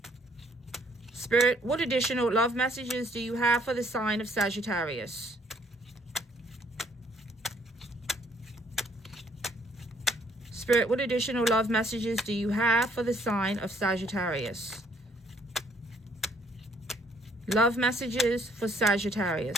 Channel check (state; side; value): normal; both; correlation 0.65